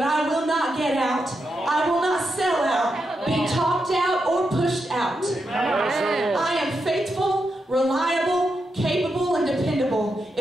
I will not get out. I will not sell out, be talked out, or pushed out. I am faithful, reliable, capable, and dependable.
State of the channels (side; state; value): both; normal; correlation 0.85